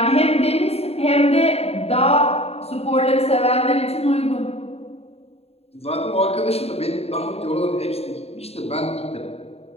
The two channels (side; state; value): right; late; 0.29 ms